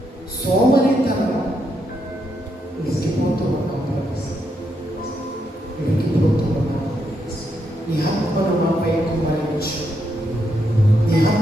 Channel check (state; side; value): normal; both; correlation 0.80